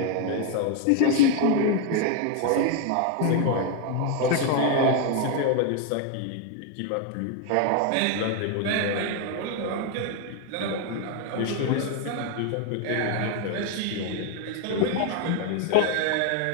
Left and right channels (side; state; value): both; different; correlation 0.01